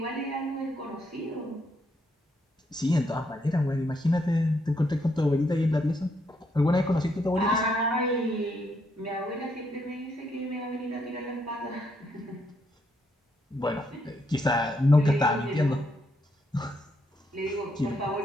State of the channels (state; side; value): normal; both; correlation 0.76